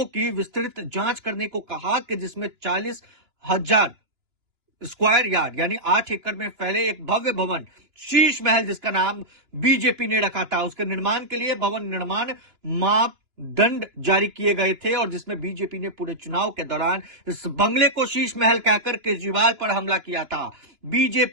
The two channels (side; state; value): left; late; 2.9 ms